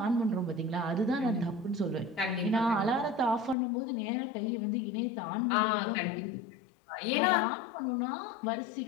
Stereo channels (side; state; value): right; drops out; at 3.6 s